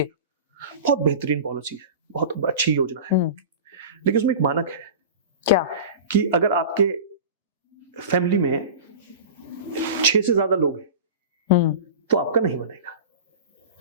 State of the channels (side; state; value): both; inverted; correlation -0.33